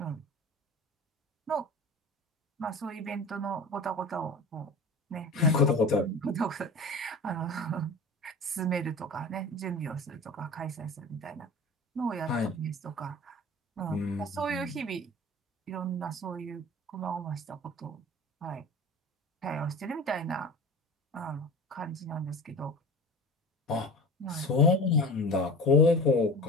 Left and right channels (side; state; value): both; normal; correlation 0.35